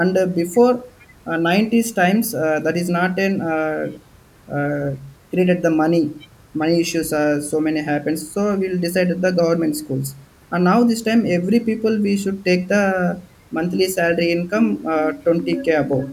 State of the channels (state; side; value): identical; both; correlation 1.00